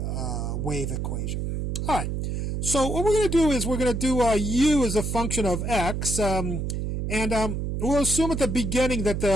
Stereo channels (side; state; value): right; noise; hum, 2 dB below the sound